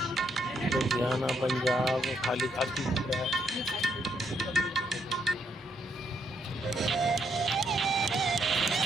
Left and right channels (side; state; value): both; normal; correlation 0.75